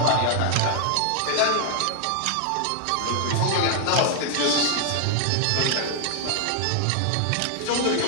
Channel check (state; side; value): different; both; correlation 0.00